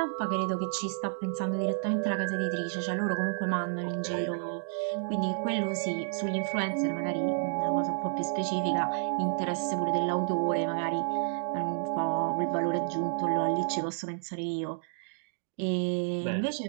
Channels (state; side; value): silent; left; digital silence